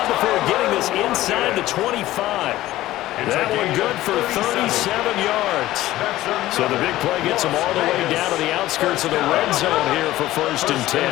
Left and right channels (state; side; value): quieter; right; 15.6 dB